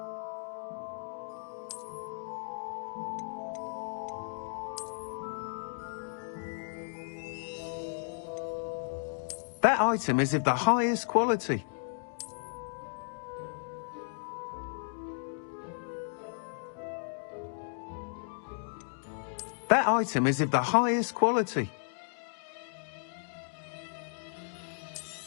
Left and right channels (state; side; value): silent; right; digital silence